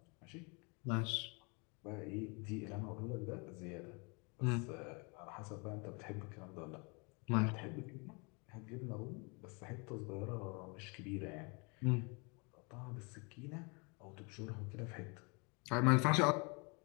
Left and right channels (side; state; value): right; quieter; 31.7 dB